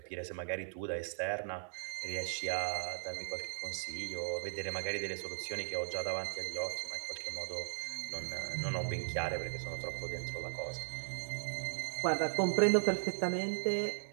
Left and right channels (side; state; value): left; silent; digital silence